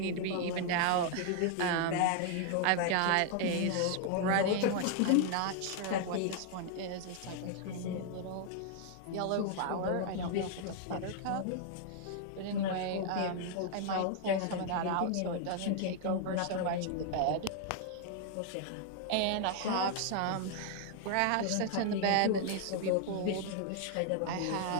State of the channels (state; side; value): different; both; correlation 0.00